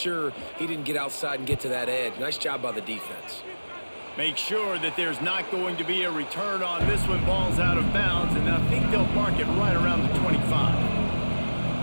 he didn't get outside and get to that edge. Nice job by the defense. Make sure that there's not going to be a return on this one. Ball's out of bounds, and I think they'll mark it right around the 25.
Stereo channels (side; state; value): both; inverted; correlation -1.00